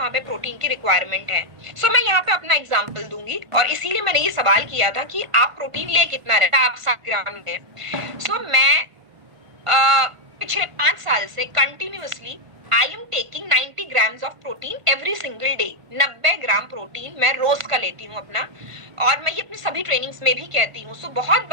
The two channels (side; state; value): left; late; 1.5 ms